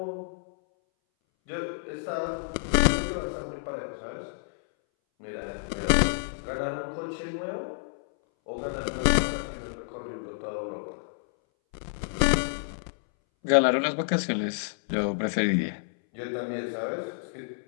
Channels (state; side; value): silent; right; 59 dB below the other